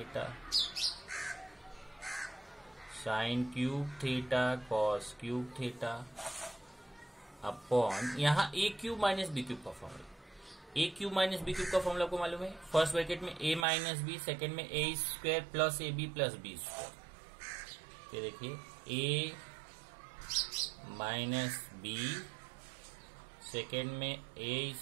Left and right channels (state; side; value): drops out; left; at 13.7 s